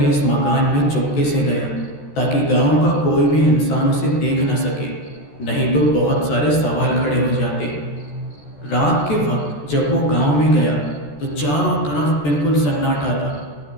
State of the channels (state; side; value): late; right; 14 ms